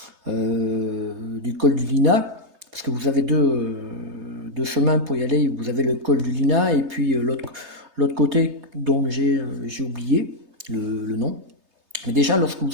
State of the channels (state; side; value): late; left; 3.3 ms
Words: du col du Lina, parce que vous avez deux chemins pour y aller, vous avez le col du Lina et puis l'autre côté dont j'ai oublié le nom. Mais déjà, lorsque